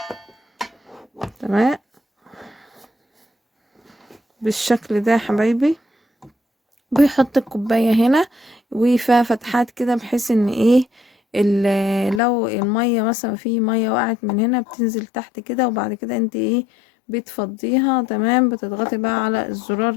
تمام، بالشكل ده يا حبايبي. بيحط الكوباية هنا وفيها فتحات كده، بحيث ان ايه لو المية مثلا، في مية وقعت من هنا بتنزل تحت كده، وبعد كده انت ايه بتفضيها. تمام. بتضغطي بقى على الزرار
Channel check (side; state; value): right; drops out; at 12.2 s